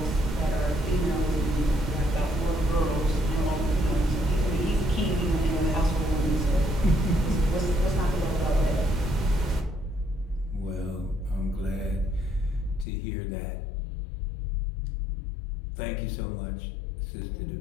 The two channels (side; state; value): right; drops out; at 12.9 s